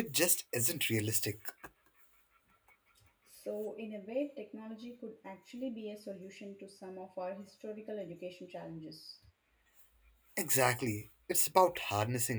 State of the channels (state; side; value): identical; both; correlation 1.00